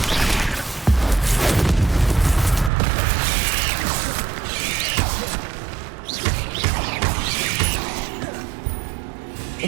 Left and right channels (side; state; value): left; drops out; at 2.7 s